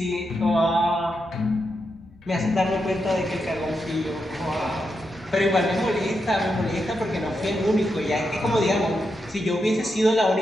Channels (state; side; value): normal; both; correlation 0.85